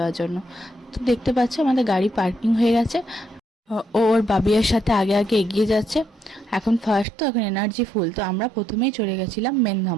জন্য। তো দেখতে পাচ্ছ আমাদের গাড়ি পার্কিং হয়ে গেছে। ও ওর বাবিয়ার সাথে আগে আগে এগিয়ে যাচ্ছে। এখন ফার্স্ট, তো এখন এনার্জি ফুল। তো আমরা প্রথমেই চলে গেছিলাম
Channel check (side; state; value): left; drops out; at 7.1 s